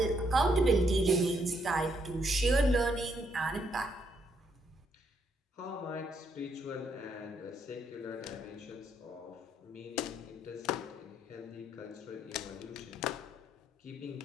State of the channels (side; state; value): both; normal; correlation 0.74